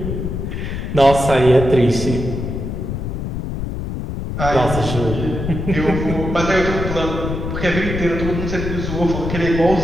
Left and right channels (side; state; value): left; noise; rumble, 4 dB below the sound